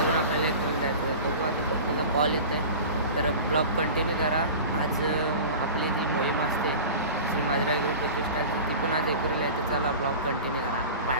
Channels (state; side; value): inverted; both; correlation -0.35